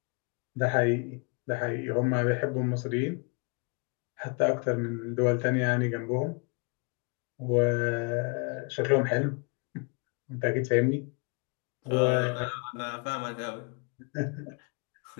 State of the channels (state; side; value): quieter; right; 33.4 dB